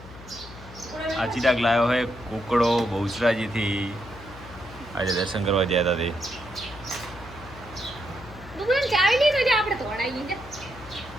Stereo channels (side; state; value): left; noise; hum, 17 dB below the sound